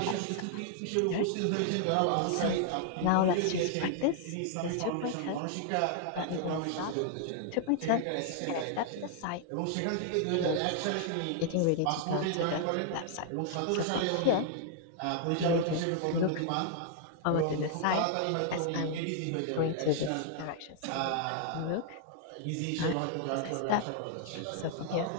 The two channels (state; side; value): different; both; correlation 0.00